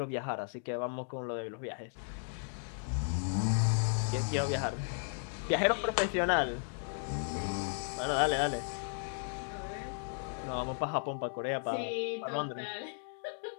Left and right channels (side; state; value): right; silent; digital silence